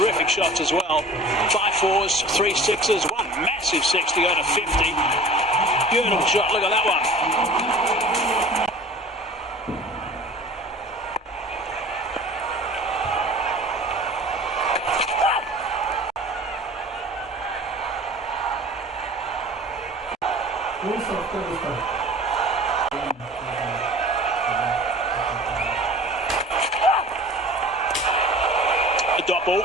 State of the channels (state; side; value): normal; both; correlation 0.43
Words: shots as well. 5 4s, 3 6s, one massive 6 to go to 50. Beautiful shot, look at that one. The dot ball